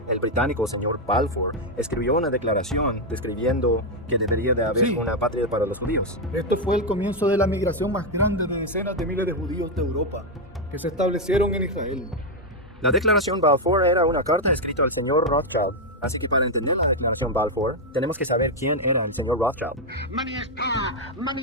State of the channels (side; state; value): both; normal; correlation 0.02